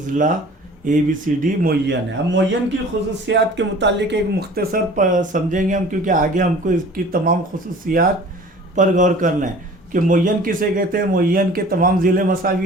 ABCD मुय्यन है। अब मुय्यन की खुसूसियात के मुतालिक एक मुख्तसर समझेंगे हम, क्योंकि आगे हमको इसकी तमाम खुसूसियात पर गौर करना है कि मुय्यन किसे कहते हैं। मुय्यन के तमाम ज़िले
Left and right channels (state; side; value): normal; both; correlation 0.45